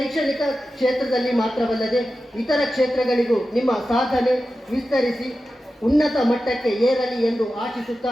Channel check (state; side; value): normal; both; correlation 0.93